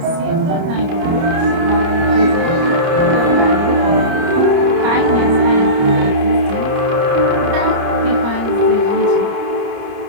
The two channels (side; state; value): left; late; 30 ms